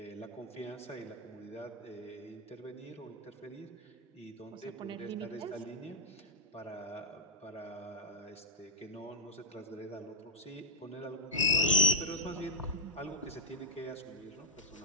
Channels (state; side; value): normal; both; correlation -0.04